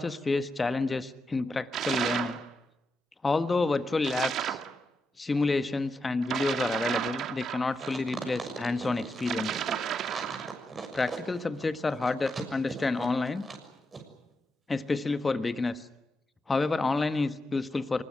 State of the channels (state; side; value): normal; both; correlation 0.86